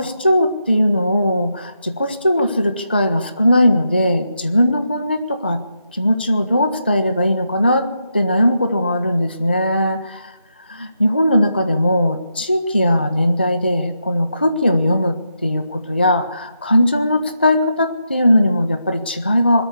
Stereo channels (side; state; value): both; inverted; correlation -0.83